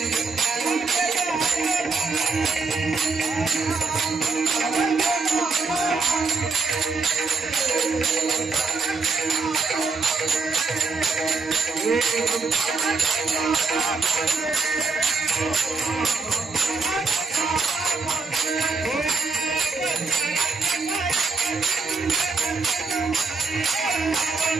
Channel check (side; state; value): left; quieter; 4.2 dB